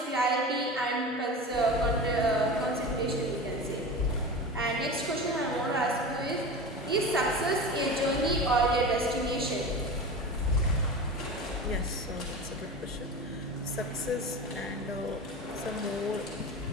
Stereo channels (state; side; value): normal; both; correlation 0.30